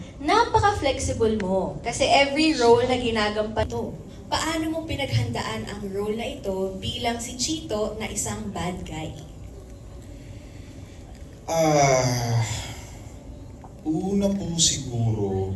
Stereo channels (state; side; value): identical; both; correlation 1.00